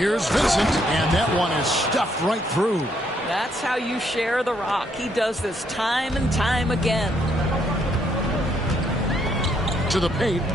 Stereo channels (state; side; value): normal; both; correlation 0.72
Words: Vincent, and that one is stuffed right through. That's how you share the rock. He does this time and time again. To the paint,